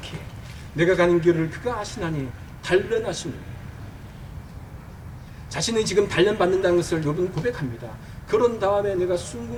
내가 가는 길을 그가 아시나니 단련하신 거예요. 자신이 지금 단련받는다는 것을 욥은 고백합니다. 그런 다음에 내가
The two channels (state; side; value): identical; both; correlation 1.00